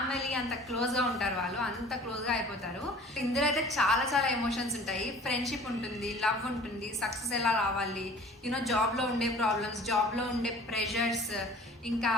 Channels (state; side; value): normal; both; correlation 0.47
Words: అంత క్లోజ్ గా ఉంటారు, వాళ్ళు అంత క్లోజ్ గా అయిపోతారు. ఇందులో అయితే చాలా చాలా ఎమోషన్స్ ఉంటాయి, ఫ్రెండ్షిప్ ఉంటుంది, లవ్ ఉంటుంది, సక్సెస్ ఎలా రావాలి, యూనో జాబ్ లో ఉండే ప్రాబ్లమ్స్, జాబ్ లో ఉండే ప్రెషర్స్, ఇంకా